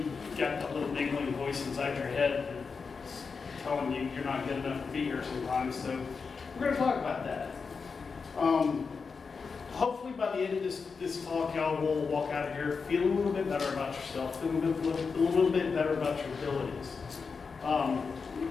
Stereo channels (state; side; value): quieter; right; 5.1 dB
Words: got that little niggling voice inside your head that's telling you you're not good enough to be here sometimes. So we're going to talk about that. Hopefully by the end of this talk, y'all will walk out of here feeling a little bit better about yourself, feeling a little bit better about your abilities.